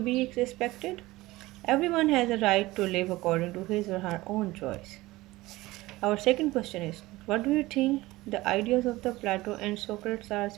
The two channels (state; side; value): quieter; left; 19.1 dB